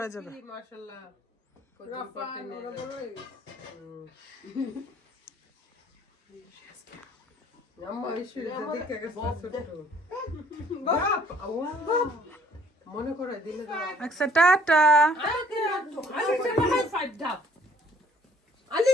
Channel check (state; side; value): normal; both; correlation 0.60